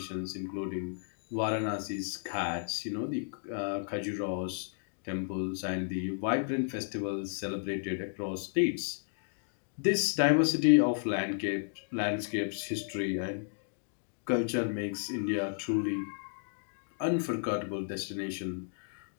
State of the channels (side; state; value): right; silent; digital silence